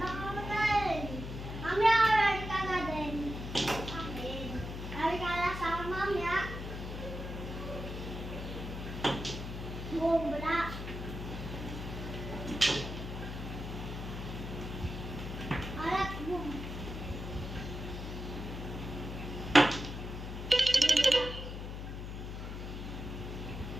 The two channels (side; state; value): left; noise; hum, 7 dB below the sound